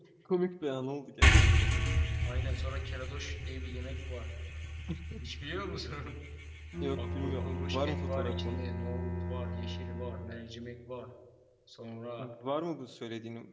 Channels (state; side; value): identical; both; correlation 1.00